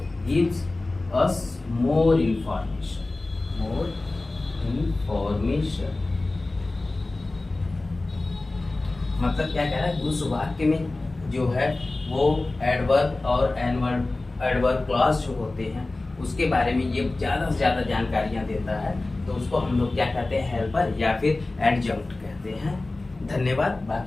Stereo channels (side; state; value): right; quieter; 3.1 dB